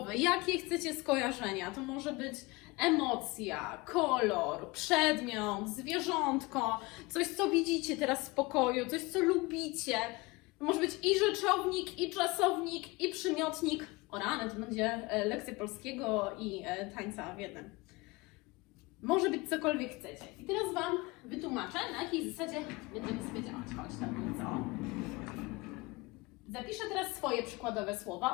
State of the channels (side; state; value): right; quieter; 23.8 dB